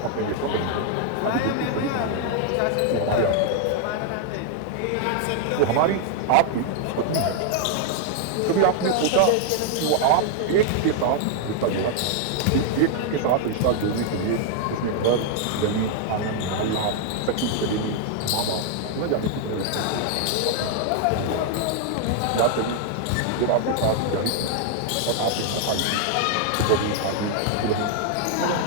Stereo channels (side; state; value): both; different; correlation 0.00